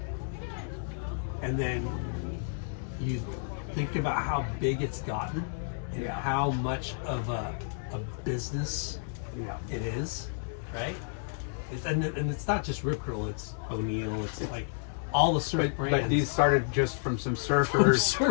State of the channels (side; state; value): right; silent; digital silence